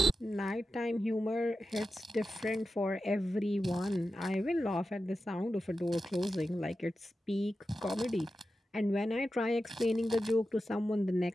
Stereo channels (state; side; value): normal; both; correlation 0.92